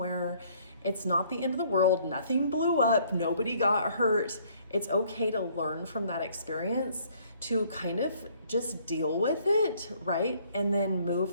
It's not the end of the world. Nothing blew up. Nobody got hurt. It's okay to learn from that experience, to kind of just deal with it, right? And then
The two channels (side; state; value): both; inverted; correlation -0.61